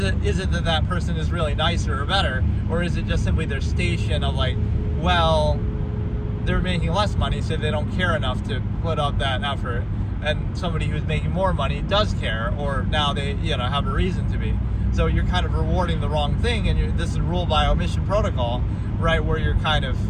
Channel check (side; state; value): both; identical; correlation 1.00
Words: it that person is really nicer or better, or is it just simply their station of like, well, they're making less money, so they don't care enough to put up that effort, and somebody who's making more money does care, or now they have a reason to be. So you're kind of rewarding the wrong thing, and this is rule by omission protocol, right? Where you're kind of